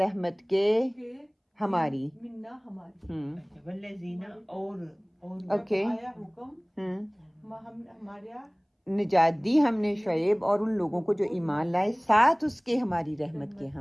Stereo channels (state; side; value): identical; both; correlation 1.00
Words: کے ہماری منا ہماری. والذین اور اوکے آیا حکم ہمارے نجات دی ہم نے شعیب اور ان لوگوں کو جو ایمان لائے ساتھ اس کے ہماری رحمت کے